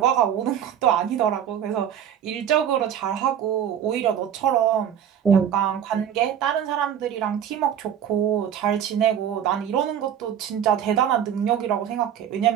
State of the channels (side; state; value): left; quieter; 9.4 dB